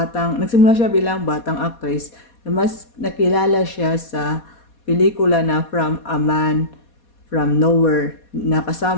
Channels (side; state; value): right; late; 4.2 ms